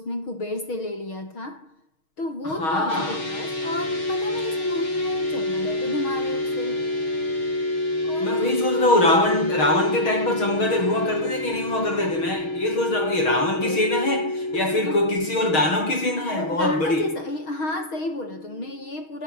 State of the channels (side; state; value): right; late; 6.4 ms